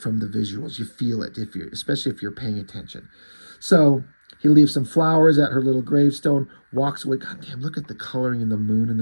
the visuals. You feel it, especially if you're paying attention. So he leaves some flowers at her little gravestone, walks away. God damn, look at the coloring in the moon and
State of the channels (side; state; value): both; inverted; correlation -1.00